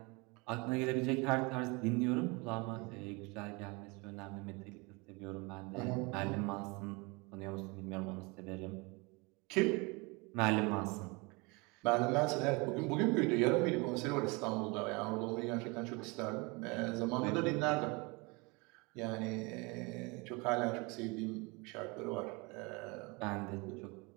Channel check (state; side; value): quieter; left; 27.7 dB